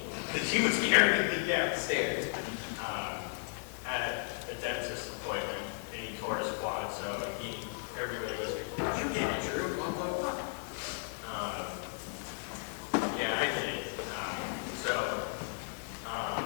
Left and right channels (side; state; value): right; silent; digital silence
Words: because he was carrying me downstairs at a dentist appointment, and he tore his quad, so everybody was like, "You did it, Drew, blah, blah, blah." Yeah, I did it.